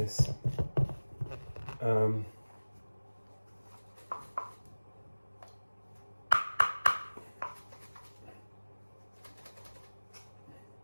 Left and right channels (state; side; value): inverted; both; correlation -1.00